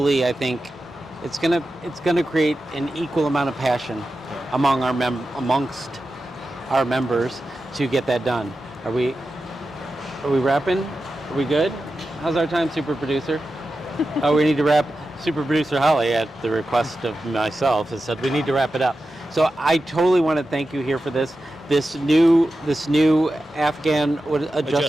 I think, it's gonna create an equal amount of passion amongst our members to get that done. Are we wrapping? Are we good? How's our time, super producer? Oh, we need to wrap. Super producer Holly, at the request of myself, has said we need to wrap it up. So I totally want to thank you here for this new Afghan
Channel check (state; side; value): normal; both; correlation 0.92